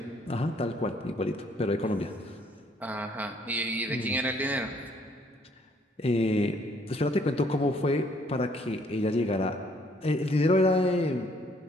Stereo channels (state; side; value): normal; both; correlation 0.64